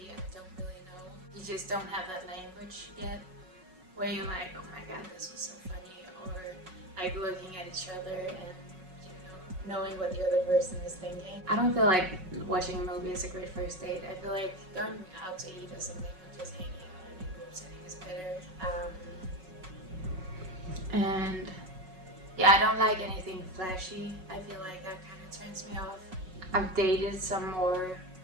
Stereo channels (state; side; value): late; left; 5.4 ms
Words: I don't really know. You just don't have that language yet, where you're like, oh my god, this was so funny, or looking at each other and knowing what the other person is thinking. I don't feel like watching a movie is a great first date. I feel like going out to eat or something, or just hanging out in a group setting is better. And yeah, I don't like anything flashy. I feel like that kind of turns me off. I've dated some more